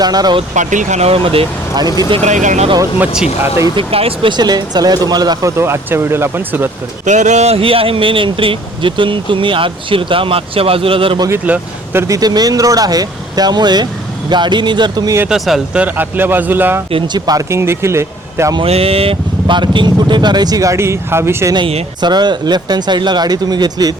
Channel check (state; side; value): normal; both; correlation 0.56